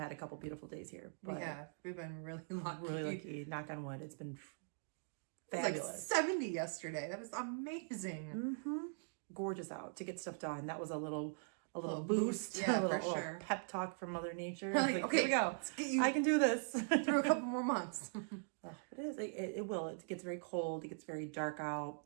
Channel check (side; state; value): left; silent; digital silence